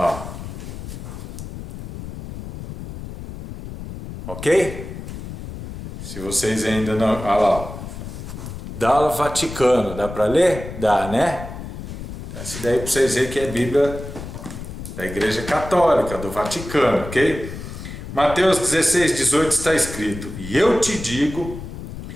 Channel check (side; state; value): left; noise; rumble, 10 dB below the sound